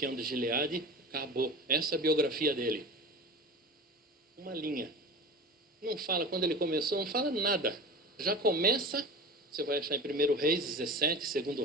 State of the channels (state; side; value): normal; both; correlation 0.33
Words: de Gileade, acabou. Essa é a biografia dele. Uma linha. Não fala quando ele começou, não fala nada. Já começa, você vai achar em 1 Reis 17,